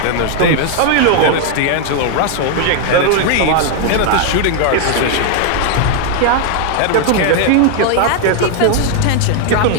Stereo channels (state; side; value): different; both; correlation 0.00